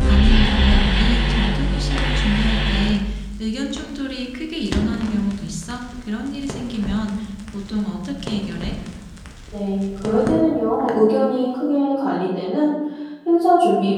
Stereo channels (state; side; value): identical; both; correlation 1.00